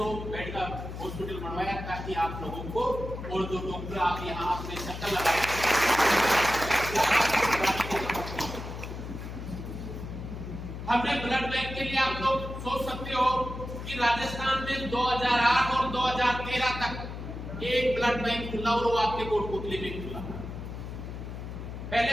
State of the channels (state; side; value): noise; left; hum, 8 dB below the sound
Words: बेड का हॉस्पिटल बनवाया ताकि आप लोगों को और जो डॉक्टर आप यहाँ अपने चक्कर लगाए। हमने ब्लड बैंक के लिए आप लोग सोच सकते हो कि राजस्थान में 2008 और 2013 तक एक ब्लड बैंक खुला और वो आपके कोटपुतली में खुला।